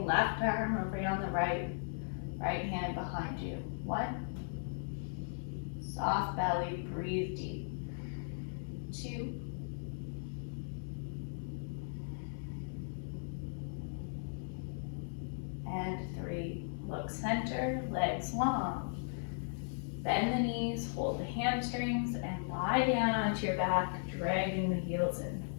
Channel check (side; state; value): right; silent; digital silence